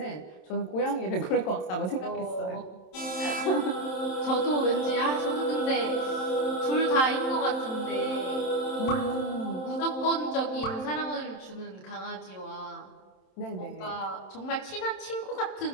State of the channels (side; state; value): right; late; 27 ms